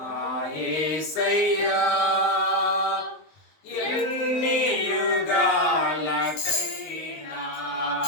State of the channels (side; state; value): right; late; 19 ms